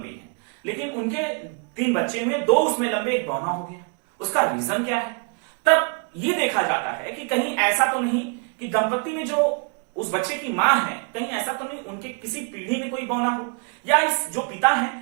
हैं, लेकिन उनके 3 बच्चे हुए, 2 उसमें लंबे, एक बौना हो गया। उसका रीजन क्या है? तब ये देखा जाता है कि कहीं ऐसा तो नहीं कि दंपति में जो उस बच्चे की मां है, कहीं ऐसा तो नहीं उनके किसी पीढ़ी में कोई बौना हो, या इस जो पिता है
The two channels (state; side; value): quieter; left; 38.1 dB